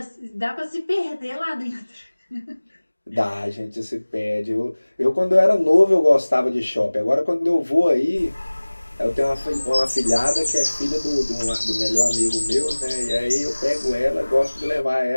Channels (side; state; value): both; inverted; correlation -1.00